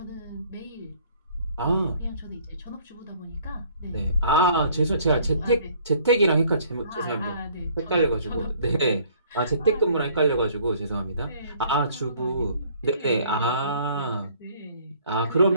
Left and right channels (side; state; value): both; inverted; correlation -0.58